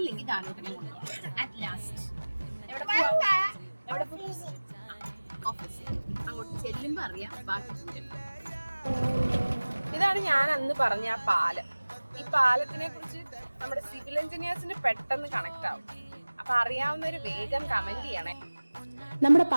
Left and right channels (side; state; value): both; inverted; correlation -1.00